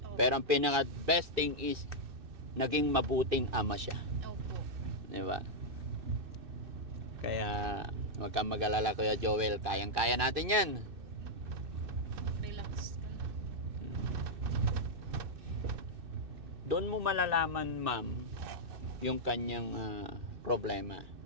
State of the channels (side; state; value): left; late; 2.6 ms